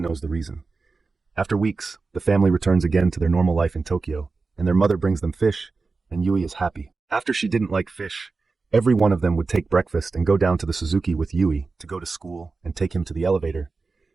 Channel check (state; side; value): quieter; left; 4.1 dB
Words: knows the reason. After weeks, the family returns again to their normal life in Tokyo, and their mother brings them fish, and Yui is happy. After she didn't like fish, every one of them would take breakfast and go down to the Suzuki with Yui to go to school and take him to the elevator.